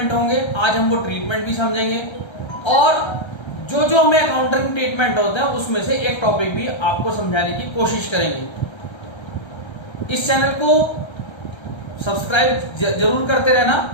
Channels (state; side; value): late; right; 1.3 ms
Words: होंगे। आज हम वो ट्रीटमेंट भी समझेंगे और जो जो हमें अकाउंटिंग ट्रीटमेंट होते हैं उसमें से एक टॉपिक भी आपको समझाने की कोशिश करेंगे। इस चैनल को सब्सक्राइब जरूर करते रहना,